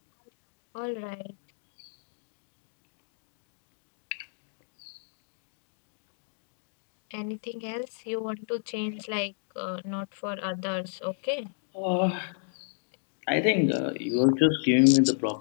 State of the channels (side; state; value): right; silent; digital silence